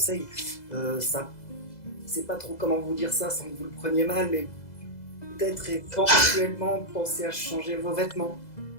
Ça, c'est pas trop comment vous dire ça sans que vous le preniez mal, mais peut-être éventuellement penser à changer vos vêtements.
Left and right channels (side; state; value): right; late; 2.0 ms